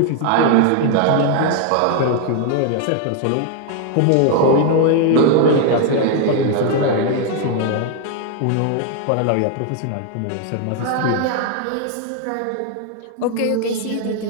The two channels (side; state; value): both; different; correlation 0.00